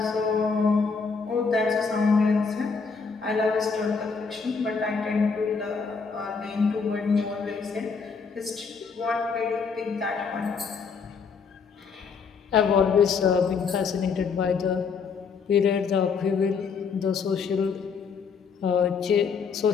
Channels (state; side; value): quieter; right; 5.4 dB